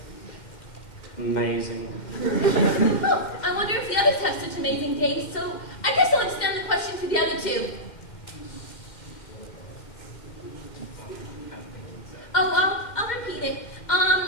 amazing. Oh, I wonder if the others have such amazing days, so I guess I'll extend the question to the other two. Oh, I'll repeat it.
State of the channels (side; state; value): right; late; 2.1 ms